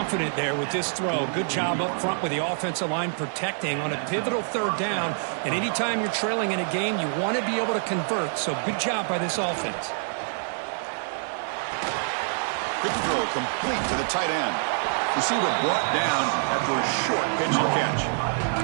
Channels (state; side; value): silent; left; digital silence